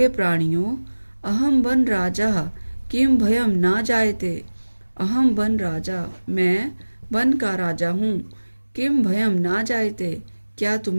प्राणियों अहम वन राजा किम भयम ना जायते अहम वन राजा मैं वन का राजा हूँ किम भयम ना जायते क्या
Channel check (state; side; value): inverted; both; correlation -1.00